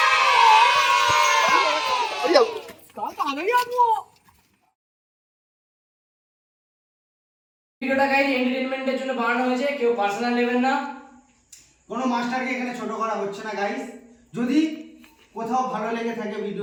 ভিডিওটা গাইজ এন্টারটেইনমেন্টের জন্য বানানো হয়েছে, কেউ পার্সোনাল নেবেন না। কোনো মাস্টারকে এখানে ছোট করা হচ্ছে না গাইস। যদি কোথাও ভালো লেগে থাকে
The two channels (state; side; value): identical; both; correlation 1.00